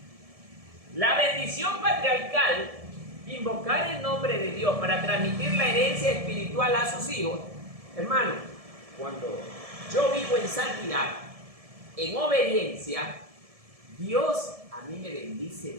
la bendición patriarcal, invocar el nombre de Dios para transmitir la herencia espiritual a sus hijos. Hermano, cuando yo vivo en santidad, en obediencia, Dios a mí me bendice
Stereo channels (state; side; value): late; left; 1.7 ms